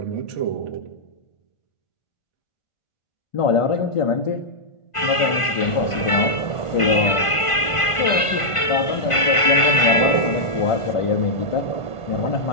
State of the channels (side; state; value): right; late; 1.5 ms